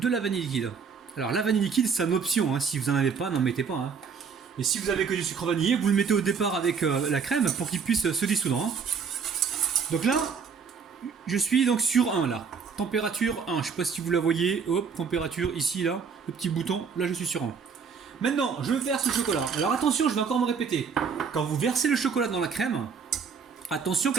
la vanille liquide. Alors la vanille liquide c'est une option, hein. Si vous n'en avez pas, n'en mettez pas. Hein. Et si vous avez que du sucre vanillé, vous le mettez au départ avec la crème pour qu'il puisse se dissoudre. Hein. Donc là, je suis donc sur 1 là. Température 1, je ne sais pas si vous la voyez. Hop, température ici là, le petit bouton, là je suis sur 1. Maintenant, je verse le chocolat. Alors attention, je vais encore me répéter. Quand vous versez le chocolat dans la crème, attention que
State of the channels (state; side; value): quieter; left; 6.0 dB